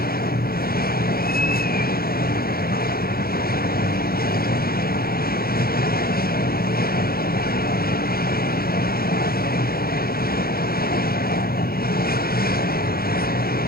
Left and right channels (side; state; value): right; late; 0.44 ms